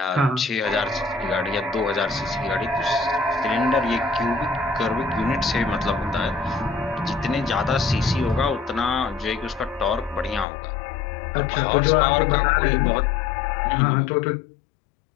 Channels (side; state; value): right; drops out; at 10.5 s